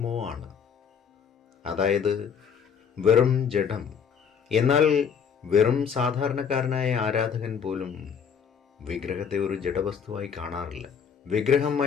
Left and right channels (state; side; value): quieter; right; 7.0 dB